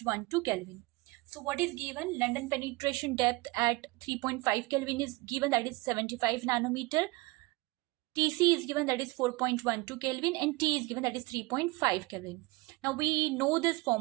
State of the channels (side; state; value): left; quieter; 23.0 dB